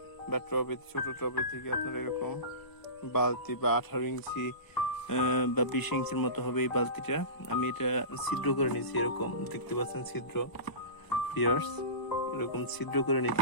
বা টবের ছোট টবের থেকে আপনারা এরকম বালতি বা 18 ইঞ্চি বা 20 ইঞ্চির মতো হবে এই বালতিটা। আমি এটা ছিদ্র করে নিয়েছি, এরকম দেখতে পাচ্ছেন ছিদ্র। ভিউয়ার্স, এরকম ছিদ্র করে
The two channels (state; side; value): late; right; 1.0 ms